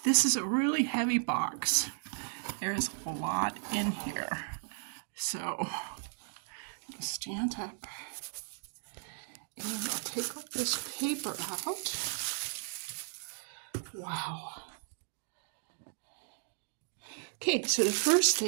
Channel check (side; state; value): left; silent; digital silence